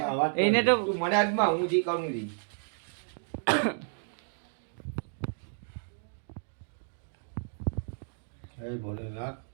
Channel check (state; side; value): silent; left; digital silence